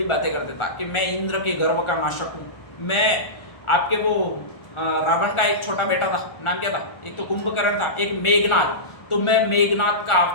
बातें करते था कि मैं इंद्र के गर्व का नाशक हूँ, मैं आपके वो रावण का एक छोटा बेटा था, नाम क्या था? एक तो कुंभकर्ण था, एक मेघनाथ, तो मैं मेघनाथ का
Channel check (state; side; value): late; right; 1.4 ms